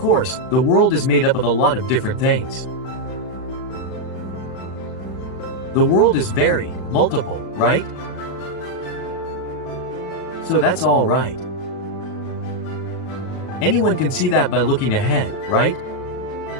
the world is made up of a lot of different things. The world is varied, multiple, right? So that's all right. Anyone can see that by looking ahead, right?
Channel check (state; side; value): late; right; 37 ms